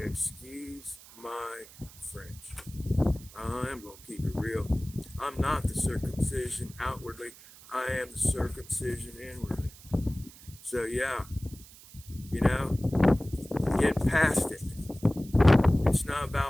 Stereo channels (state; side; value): noise; right; hiss, 20 dB below the sound